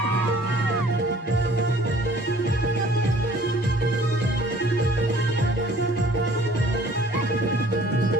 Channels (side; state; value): both; normal; correlation 0.54